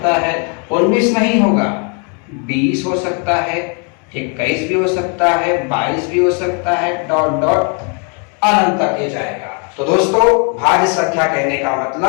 है, 19 नहीं होगा, 20 हो सकता है, 21 भी हो सकता है, 22 भी हो सकता है, डॉट डॉट अनंत तक ये जाएगा। तो दोस्तों, भाज्य संख्या कहने का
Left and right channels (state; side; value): quieter; right; 37.6 dB